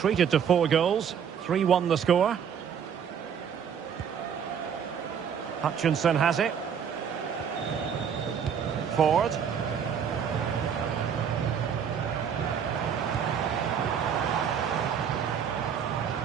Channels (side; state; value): left; quieter; 7.7 dB